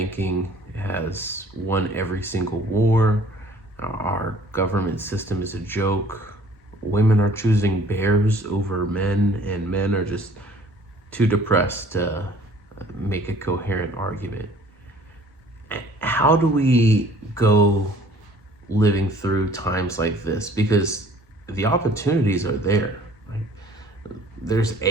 has won every single war. Our government system is a joke. Women are choosing bears over men, and men are just too depressed to make a coherent argument. How do we go living through times like this? Because the opportunities are there. Right? There's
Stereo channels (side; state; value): both; normal; correlation 0.54